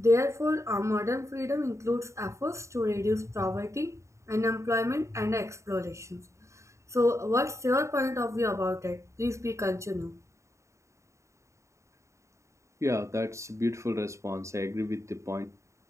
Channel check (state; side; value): late; left; 0.14 ms